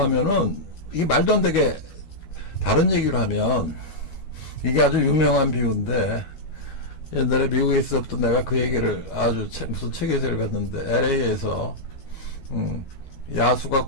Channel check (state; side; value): late; right; 13 ms